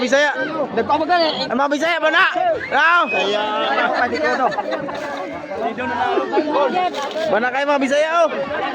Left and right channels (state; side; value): identical; both; correlation 1.00